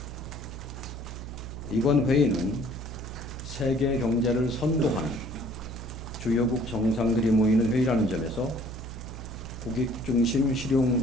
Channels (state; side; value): noise; right; hum, 9 dB below the sound